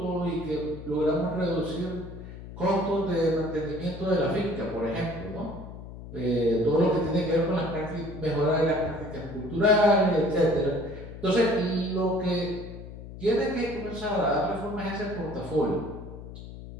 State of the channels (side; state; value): left; noise; hum, 13 dB below the sound